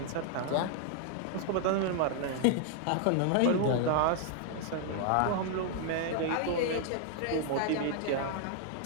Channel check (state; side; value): different; both; correlation 0.00